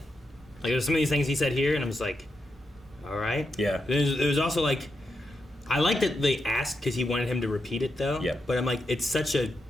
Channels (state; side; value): normal; both; correlation 0.85